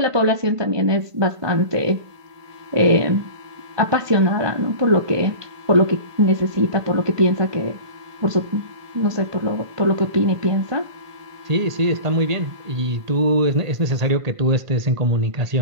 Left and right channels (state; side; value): late; left; 1.5 ms